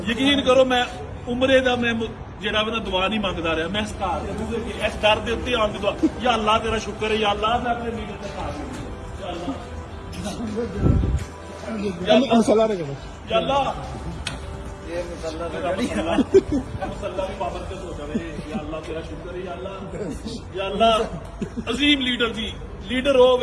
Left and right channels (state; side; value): identical; both; correlation 1.00